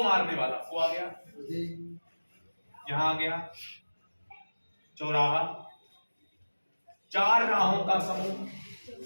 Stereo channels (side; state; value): both; inverted; correlation -1.00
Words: मारने वाला, को आ गया, यहां आ गया चौराहा, 4 राहों का समूह,